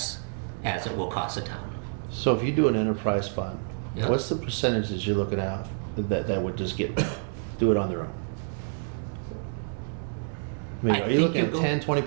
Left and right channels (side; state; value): left; silent; digital silence